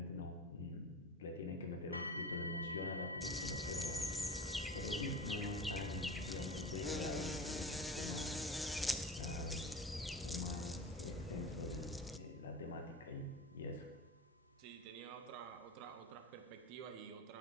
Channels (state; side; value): normal; both; correlation 0.32